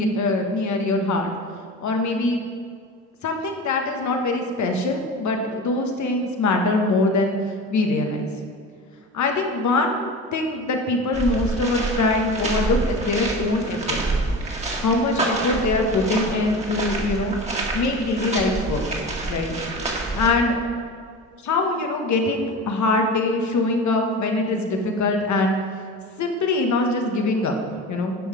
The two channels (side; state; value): both; normal; correlation 0.31